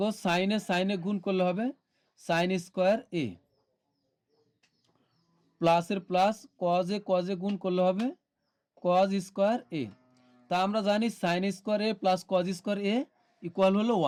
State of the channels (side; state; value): both; identical; correlation 1.00